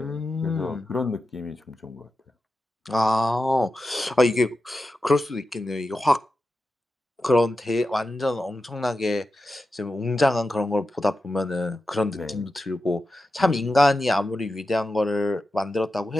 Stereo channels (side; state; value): both; normal; correlation 0.91